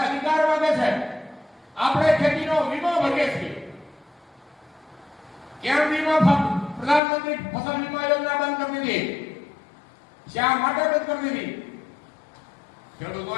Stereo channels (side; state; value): right; drops out; at 7.0 s